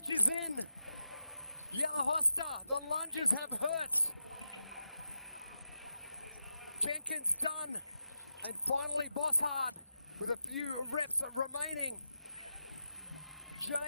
is in. Yellow Hosta, the lunges have hurt. Jenkins done. And finally Bosshard with a few reps remaining.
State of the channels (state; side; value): inverted; both; correlation -0.90